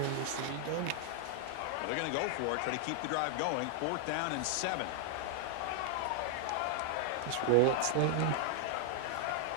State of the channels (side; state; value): both; different; correlation 0.00